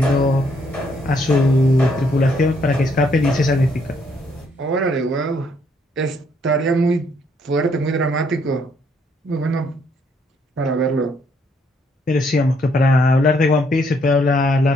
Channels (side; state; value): both; normal; correlation 0.70